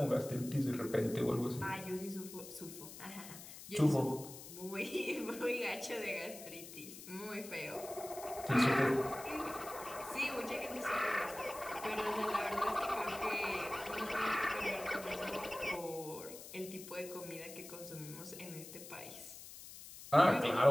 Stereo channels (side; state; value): left; noise; hiss, 14 dB below the sound